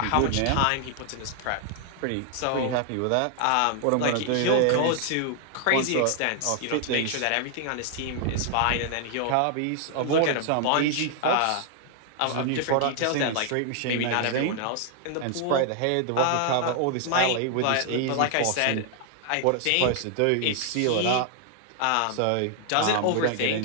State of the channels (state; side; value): different; both; correlation 0.00